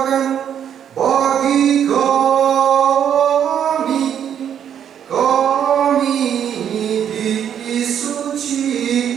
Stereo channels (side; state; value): left; quieter; 9.1 dB